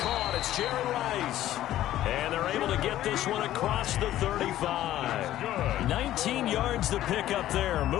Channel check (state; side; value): quieter; right; 13.5 dB